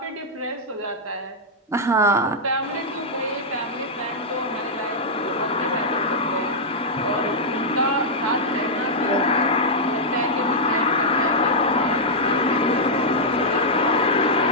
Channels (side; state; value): both; normal; correlation -0.06